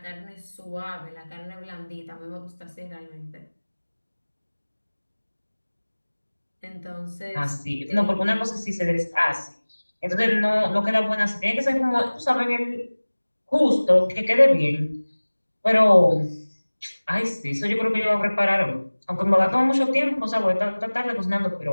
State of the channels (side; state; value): both; inverted; correlation -1.00